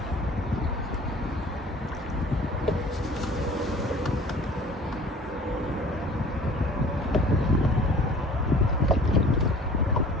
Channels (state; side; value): normal; both; correlation 0.47